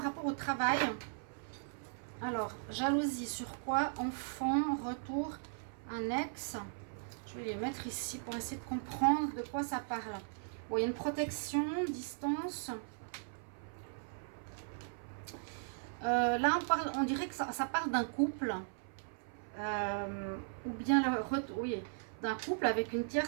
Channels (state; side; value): silent; left; 53 dB below the other